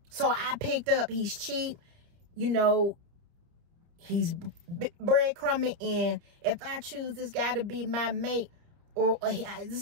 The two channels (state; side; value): late; left; 29 ms